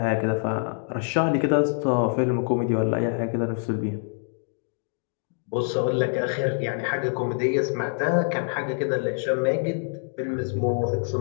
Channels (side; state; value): right; silent; 61 dB below the other